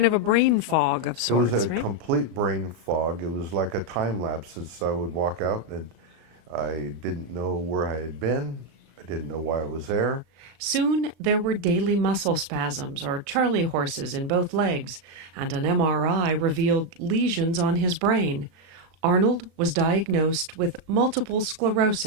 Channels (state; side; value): late; left; 37 ms